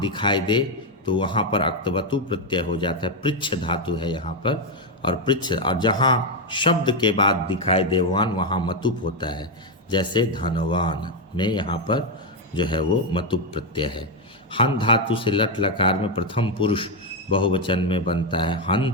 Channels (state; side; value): normal; both; correlation 0.04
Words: दे तो वहाँ पर अक्तवतु प्रत्यय हो जाता है। पृच्छ धातु है यहाँ पर, और पृच्छ, और जहाँ शब्द के बाद दिखाई दे वान, वहाँ मतुप होता है। जैसे धनवान में यहाँ पर जो है वो मतुप प्रत्यय है। हन धातु से लट लकार में प्रथम पुरुष बहुवचन में बनता है